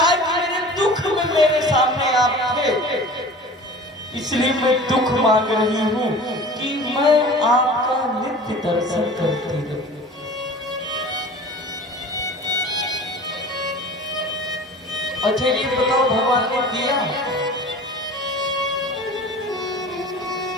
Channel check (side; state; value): both; normal; correlation 0.40